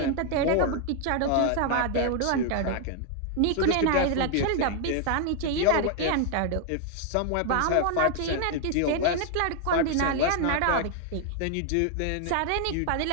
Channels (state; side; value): different; both; correlation 0.00